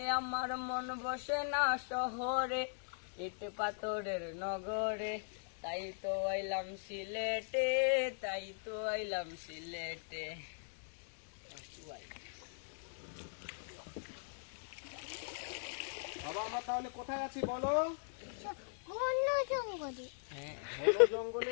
আমার মন বসে না শহরে, ইট পাথরের নগরে, তাই তো আইলাম সিলেটে, তাই তো আইলাম সিলেটে। বাবা আমরা তাহলে কোথায় আছি বলো? জঙ্গলে। ঘন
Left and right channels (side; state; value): right; silent; digital silence